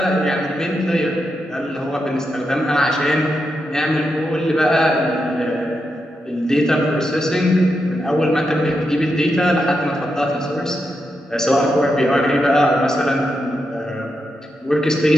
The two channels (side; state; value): both; normal; correlation 0.85